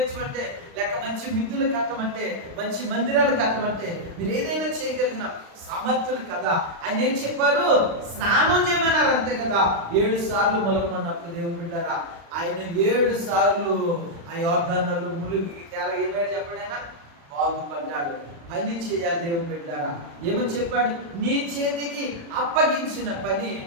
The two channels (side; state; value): left; late; 35 ms